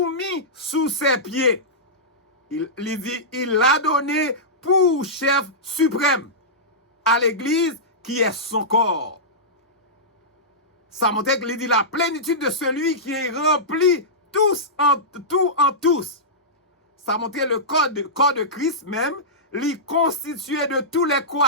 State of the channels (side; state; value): both; normal; correlation -0.15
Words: mis sous ses pieds. Il dit, il l'a donné pour chef suprême à l'église qui est son corps. Ça montre qu'il dit la plénitude de celui qui est rempli tous en tous. Ça montre le corps de Christ même, lui constitué de tous les